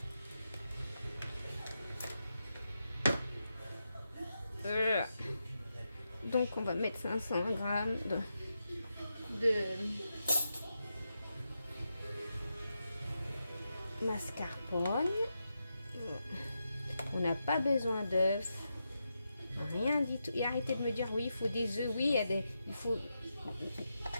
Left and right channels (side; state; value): both; inverted; correlation -0.87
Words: Donc on va mettre 500 g de mascarpone. On n'a pas besoin d'œufs, rien du tout. Et arrêtez de me dire oui, il faut des œufs. Oui, il